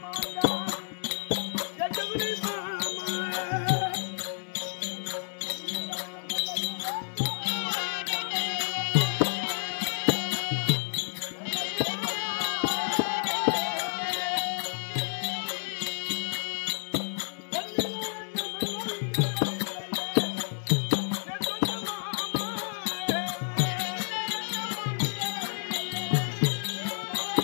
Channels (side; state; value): right; silent; digital silence